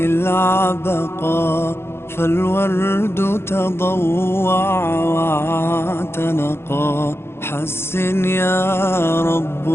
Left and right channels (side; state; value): right; late; 0.12 ms